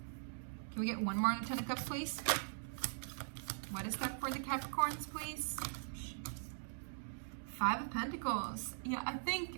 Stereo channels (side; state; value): left; silent; digital silence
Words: Can we get one more on the Ten of Cups, please? What is that for the Capricorns, please? Five of Pentacles. Yeah, I